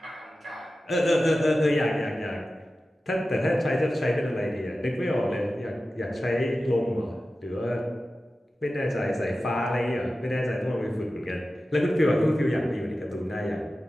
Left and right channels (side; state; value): both; normal; correlation 0.94